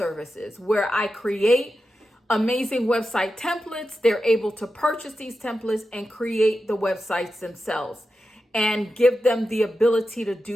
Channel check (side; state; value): both; normal; correlation 0.91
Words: where I create amazing website templates. They're able to purchase these templates and create the websites themselves and give them the ability to